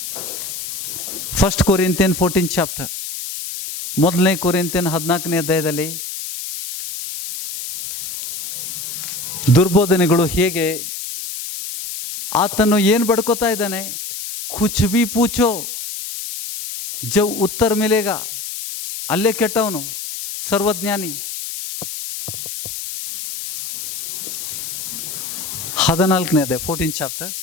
1 Corinthian 14th chapter, 1 Corinthian 14ನೇ ಅಧ್ಯಾಯದಲ್ಲಿ ದುರ್ಬೋಧನೆಗಳು ಹೇಗೆ, ಆತನು ಏನು ಬಡ್ಕೋತಾ ಇದ್ದಾನೆ? ಕುಚ್ ಬಿ ಪೂಚೋ ಜವ್ ಉತ್ತರ ಮಿಲೇಗ. ಅಲ್ಲೇ ಕೆಟ್ಟವನು, ಸರ್ವಜ್ಞಾನಿ. 14ನೇ ಅಧ್ಯಾಯ 14th chapter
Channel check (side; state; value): left; noise; hiss, 7 dB below the sound